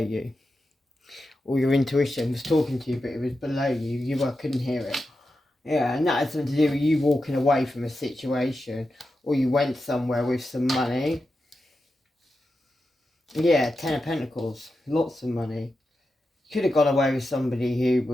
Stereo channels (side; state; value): both; normal; correlation 0.90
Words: All your intuition was talking to you, but it was below you. You couldn't hear it. Yeah, and that had something to do with you walking away from a situation, or you went somewhere with some money. Yeah, 10 of Pentacles, lots of money. You could have gone away with somebody who